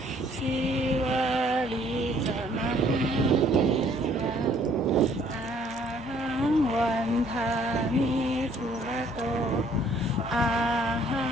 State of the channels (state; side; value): normal; both; correlation 0.61